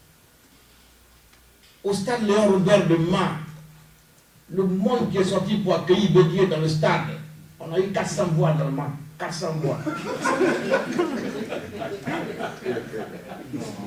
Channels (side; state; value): both; identical; correlation 1.00